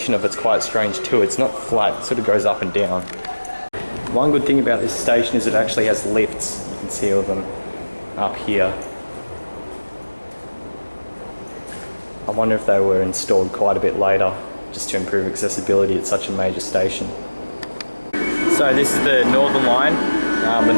of it's quite strange too. It's not flat, it sort of goes up and down. One good thing about this station is it actually has lifts. You can see all of them up here. I wonder if they were installed quite a bit later, just to improve accessibility at such a major station. So this is the Northern line, the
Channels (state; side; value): inverted; both; correlation -1.00